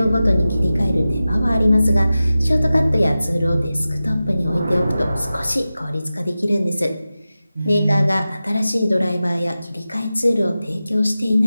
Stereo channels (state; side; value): inverted; both; correlation -0.94